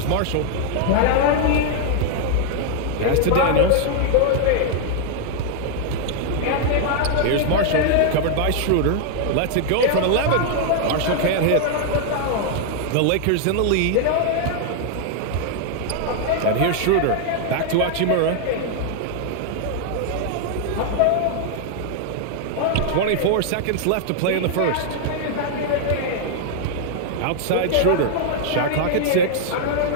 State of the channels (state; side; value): different; both; correlation 0.00